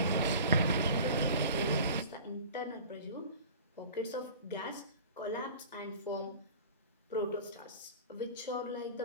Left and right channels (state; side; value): inverted; both; correlation -0.40